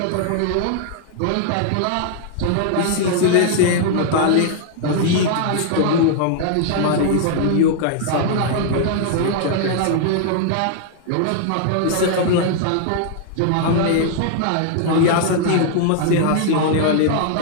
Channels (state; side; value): different; both; correlation -0.01